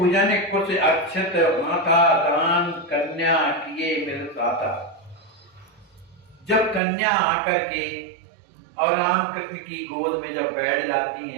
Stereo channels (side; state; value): left; drops out; at 6.8 s